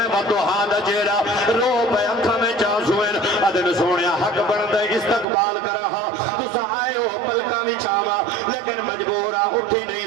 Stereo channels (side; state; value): left; drops out; at 5.2 s